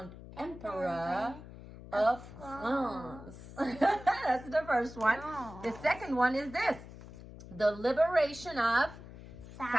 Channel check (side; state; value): left; noise; hum, 15 dB below the sound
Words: Emperor of France. That's the first one. The second one is this. The liberation of